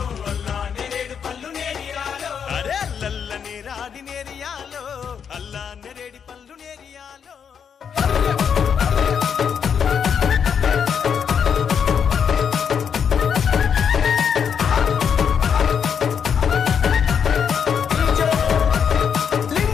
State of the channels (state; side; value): quieter; right; 7.3 dB